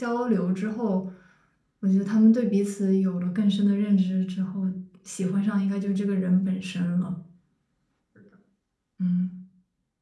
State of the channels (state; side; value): identical; both; correlation 1.00